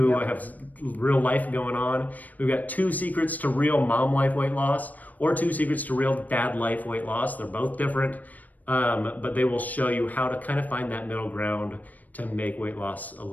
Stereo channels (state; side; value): late; right; 0.079 ms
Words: have real life going on. We've got 2 secrets to real mom life weight loss, or 2 secrets to real dad life weight loss. They're both different, but they will show you how to kind of find that middle ground to make weight loss a